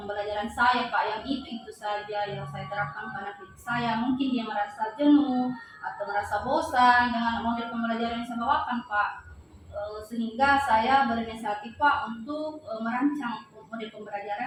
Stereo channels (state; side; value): identical; both; correlation 1.00